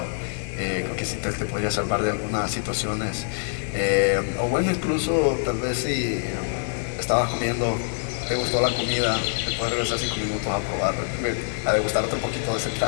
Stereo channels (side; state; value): right; silent; 62 dB below the other